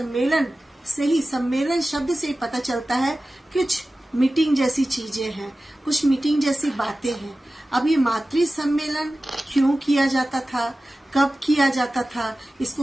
से ही, सम्मेलन शब्द से ही पता चलता है कुछ मीटिंग जैसी चीजें हैं, कुछ मीटिंग जैसी बातें हैं। अब ये मातृ सम्मेलन क्यों किया जाता था, कब किया जाता था,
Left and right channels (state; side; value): normal; both; correlation 0.96